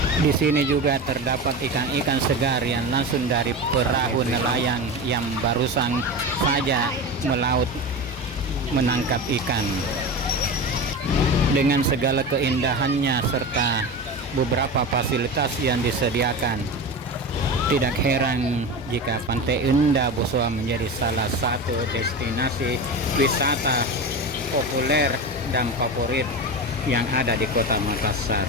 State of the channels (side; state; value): both; normal; correlation 0.25